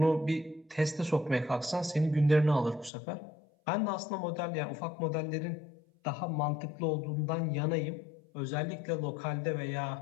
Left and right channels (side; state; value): right; drops out; at 2.9 s